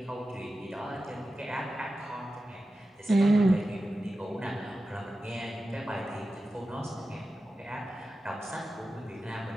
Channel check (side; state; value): both; normal; correlation 0.93